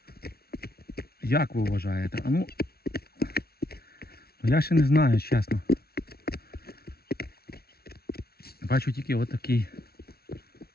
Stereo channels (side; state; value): right; late; 0.45 ms